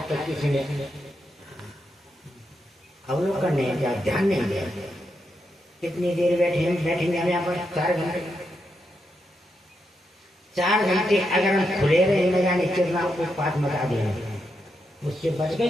तक किसी ने अवलोकन नहीं किया, ध्यान नहीं दिया। कितनी देर बैठेंगे हम यहाँ पर? 4 घंटे। 4 घंटे अगर हम खुले रहे न जाने कितना उत्पात मचा देंगे, उससे बच गए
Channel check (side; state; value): both; normal; correlation 0.83